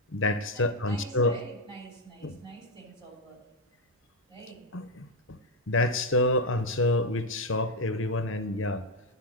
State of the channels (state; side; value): normal; both; correlation 0.05